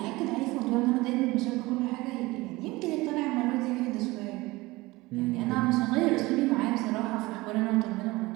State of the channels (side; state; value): left; quieter; 21.0 dB